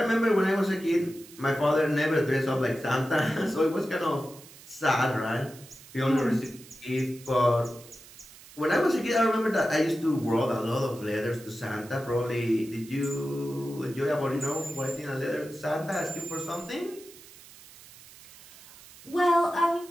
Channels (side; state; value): right; noise; hiss, 20 dB below the sound